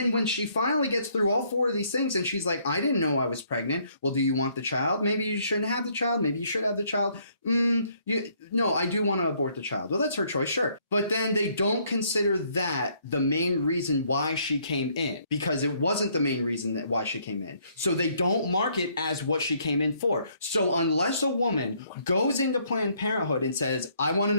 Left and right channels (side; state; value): both; inverted; correlation -0.67